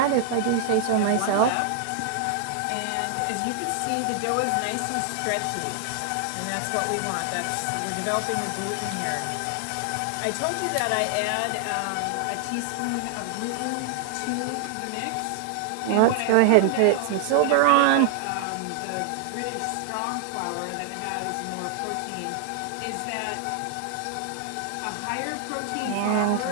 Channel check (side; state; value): both; different; correlation 0.00